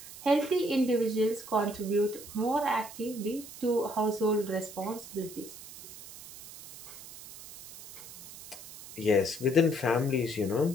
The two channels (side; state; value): right; noise; hiss, 15 dB below the sound